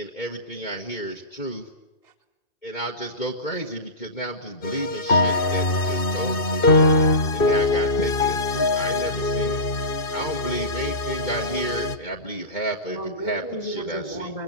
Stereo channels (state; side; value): late; right; 2.6 ms